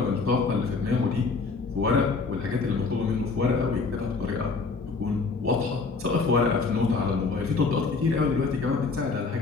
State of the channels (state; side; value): quieter; right; 4.3 dB